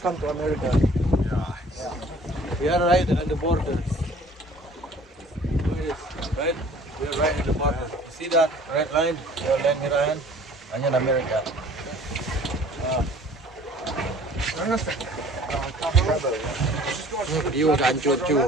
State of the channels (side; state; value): both; normal; correlation 0.51